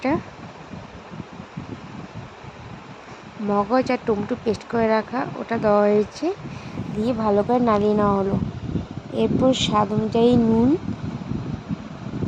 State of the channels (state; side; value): identical; both; correlation 1.00